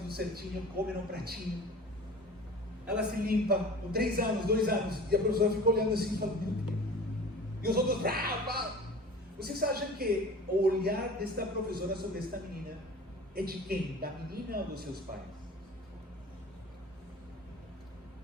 certinho, come num pratinho. Ela se limpa com 3 anos, 2 anos, e a professora fica olhando assim e fala, meu Deus. E os outros, vocês acham que o olhar desta professora sobre esta menina é de quem? Da menina ou dos seus pais?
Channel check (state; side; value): normal; both; correlation 0.40